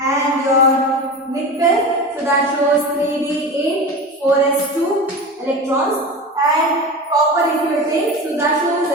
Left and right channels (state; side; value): normal; both; correlation 0.29